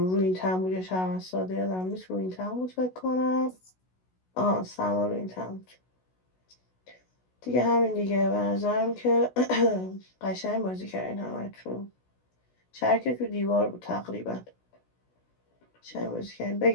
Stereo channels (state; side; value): late; right; 16 ms